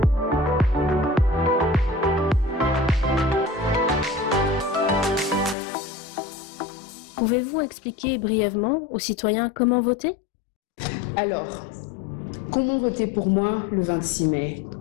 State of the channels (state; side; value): drops out; right; at 5.6 s